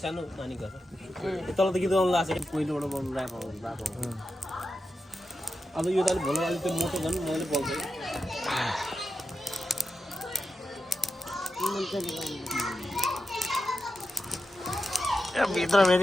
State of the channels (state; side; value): normal; both; correlation 0.89